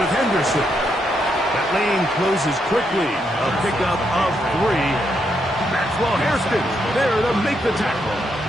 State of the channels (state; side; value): normal; both; correlation 0.79